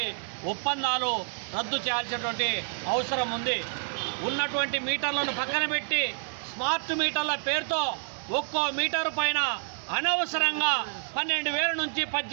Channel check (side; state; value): left; silent; 59 dB below the other